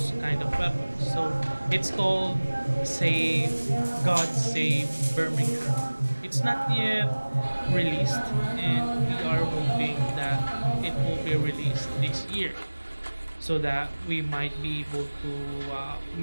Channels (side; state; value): both; inverted; correlation -1.00